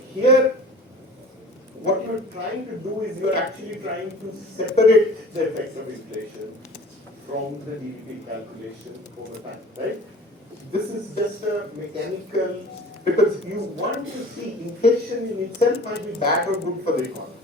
here, what you're trying to do is you're actually trying to separate the effect of inflation from the GDP calculation over time, right? This is just a mechanical, because you want to see inflation in itself might be bad or good for the economy.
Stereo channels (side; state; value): both; normal; correlation 0.43